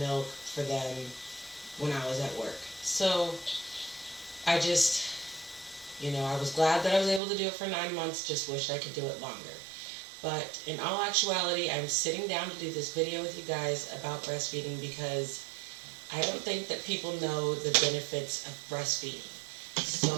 for them when I was at work. So I just, I was glad that I was able to do it for 9 months, just wished I could do it longer. But in all actuality, I'm sitting down to do this video with you guys about breastfeeding because I don't think that people know the benefits of breastfeeding.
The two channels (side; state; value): left; drops out; at 7.2 s